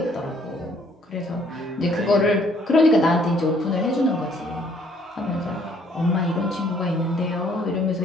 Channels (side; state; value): both; normal; correlation 0.63